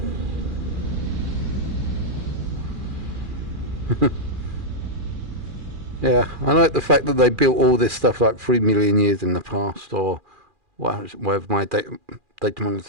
Yeah, I like the fact that they built all this stuff like 3 million years in the past, or whatever my data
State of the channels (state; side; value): late; left; 2.4 ms